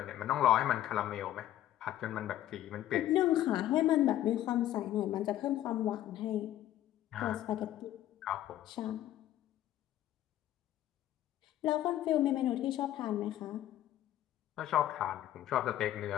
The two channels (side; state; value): right; quieter; 12.9 dB